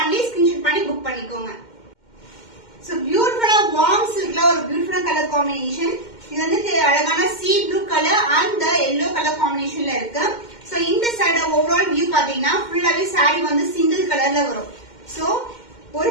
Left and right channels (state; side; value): late; right; 2.1 ms